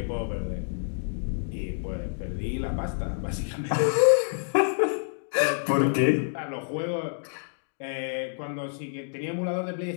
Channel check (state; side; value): silent; right; digital silence